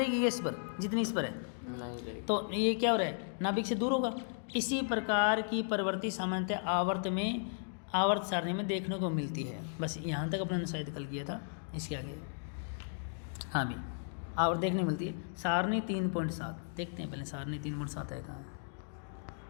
इस पर जितनी इस पर है, तो ये क्या हो रहा है, नाभिक से दूर होगा। इसी प्रकार की प्रवृत्ति सामान्यतः आवर्त सारणी में देखने को मिलती है। बस यहाँ तक अपने शायद कल किया था, इसके आगे हाँ भी आवर्त देखने मिलती है। सारणी 3.7 देखते हैं पहले, सारणी 3.7 है कहाँ,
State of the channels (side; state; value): right; silent; digital silence